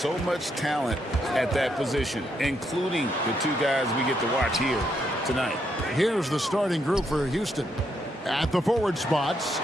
much talent at that position, including the two guys we get to watch here tonight. Here's the starting group for Houston. At the forward spots,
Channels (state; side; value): normal; both; correlation 0.77